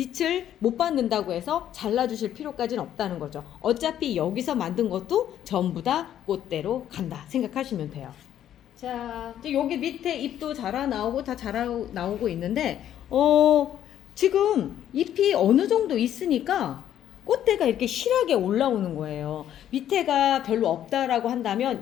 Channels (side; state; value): right; quieter; 10.9 dB